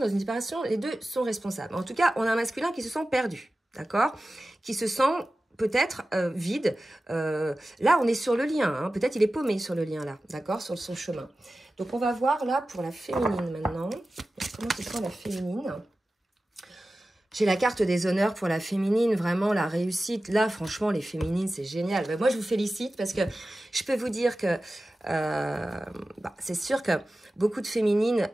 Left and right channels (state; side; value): normal; both; correlation 0.95